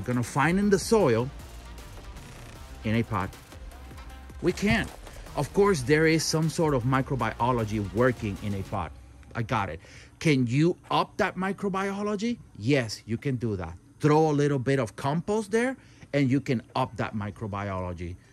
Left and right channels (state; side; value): identical; both; correlation 1.00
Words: gonna find in the soil in a pot. We can't. Of course, there is some sort of microbiology working in a pot. I got it. Can you up that microbiology? Yes, you can do that. Throw a little bit of compost there and you can up that microbiology